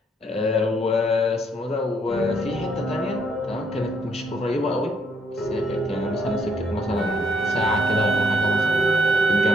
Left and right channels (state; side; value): normal; both; correlation 0.70